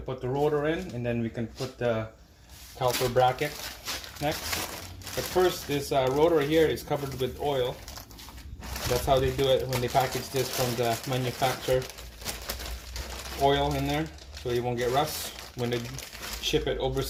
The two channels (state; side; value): identical; both; correlation 1.00